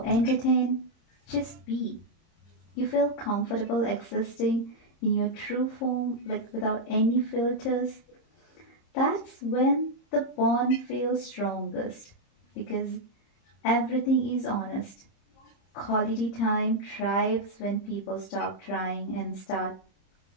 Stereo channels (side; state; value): right; late; 30 ms